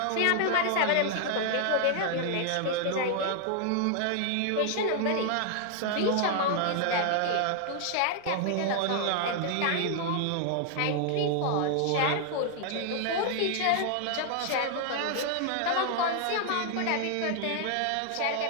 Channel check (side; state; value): both; different; correlation 0.00